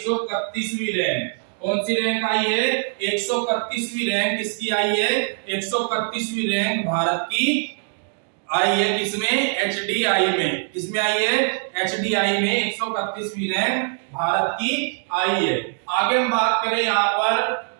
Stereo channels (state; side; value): silent; left; 64 dB below the other